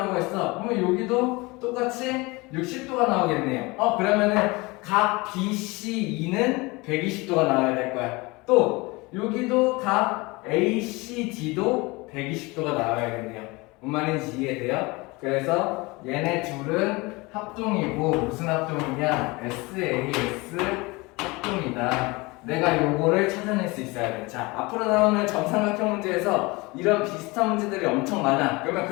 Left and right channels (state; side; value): quieter; right; 24.3 dB